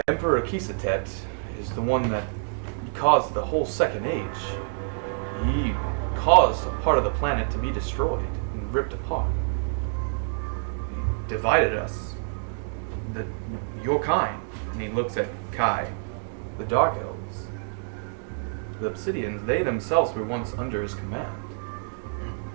Emperor Kisatet is the one that caused the whole Second Age. He caused a part of the planet to be destroyed and ripped apart. He divided us, your kind. And he looks at Kai, the Dark Elves. The Obsidians, they themselves were once under his command.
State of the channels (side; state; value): left; silent; digital silence